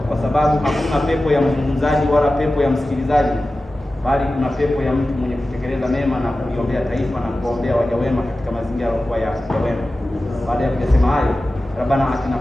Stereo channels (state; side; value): normal; both; correlation 0.95